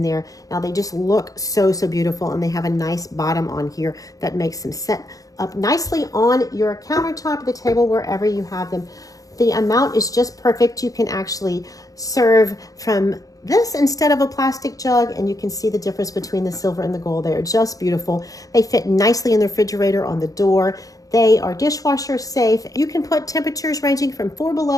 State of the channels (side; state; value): right; late; 0.17 ms